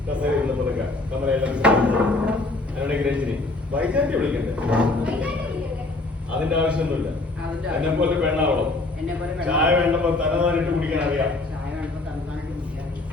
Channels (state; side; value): quieter; right; 3.0 dB